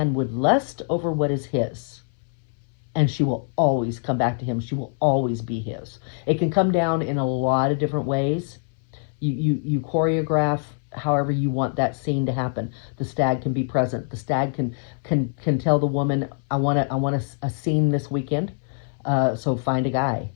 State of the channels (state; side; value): silent; right; 62 dB below the other